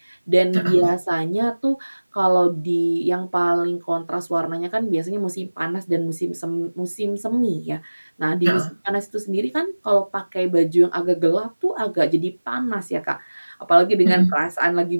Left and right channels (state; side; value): inverted; both; correlation -1.00